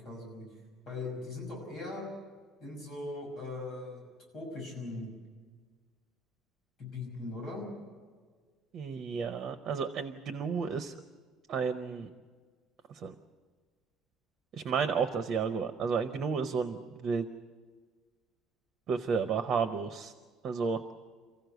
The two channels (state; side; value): quieter; left; 4.4 dB